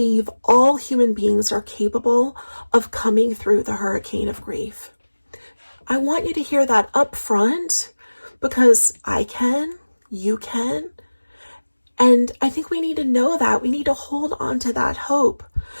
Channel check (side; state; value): both; inverted; correlation -1.00